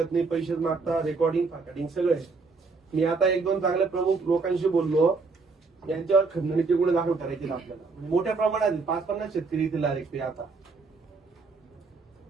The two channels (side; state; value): left; quieter; 4.3 dB